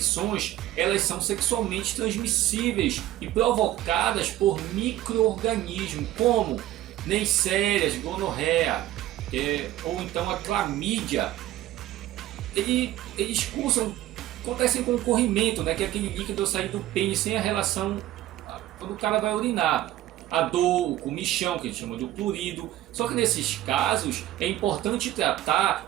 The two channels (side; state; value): left; quieter; 14.2 dB